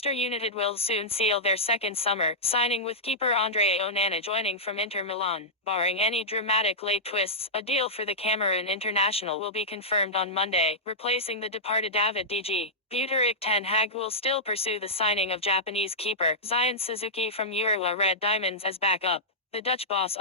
United will soon seal their second summer signing, with keeper Andre Onana joining from Inter Milan. Barring any dramatic late twists, a deal for the Cameroon international will be confirmed on Monday, replacing the departed David DG. Buteric Ten Hag will still pursue the signing of Japanese keeper Zion Suzuki from Urawa Red Diamonds as backup. The Dutch boss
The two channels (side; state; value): both; normal; correlation -0.12